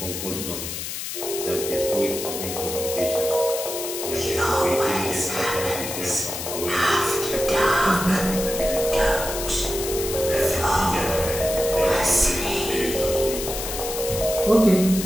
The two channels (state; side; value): noise; left; hiss, 6 dB below the sound